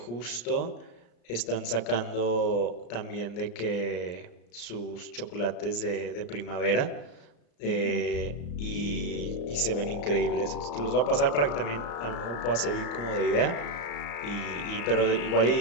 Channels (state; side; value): late; right; 34 ms